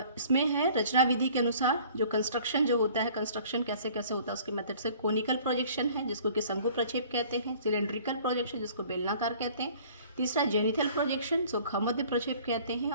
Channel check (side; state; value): both; inverted; correlation -0.51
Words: इसमें है रचना विधि के अनुसार जो कंस्ट्रक्शन जो होता है, कंस्ट्रक्शन कैसे कैसे होता है उसके मेथड से। कोनिकल प्रोजेक्शन है जिसको कि शंकु प्रक्षेप कहते हैं। सिलेंड्रिकल प्रोजेक्शन जिसको बेलनाकार कहते हैं। तीसरा जेनिथल प्रोजेक्शन जो खमध्य प्रक्षेप कहते हैं।